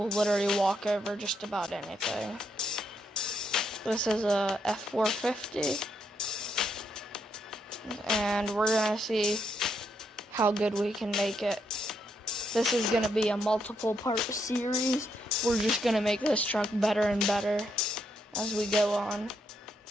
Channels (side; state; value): both; normal; correlation 0.78